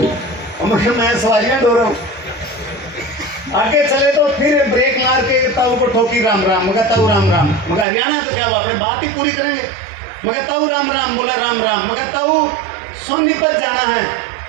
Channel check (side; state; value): left; drops out; at 7.9 s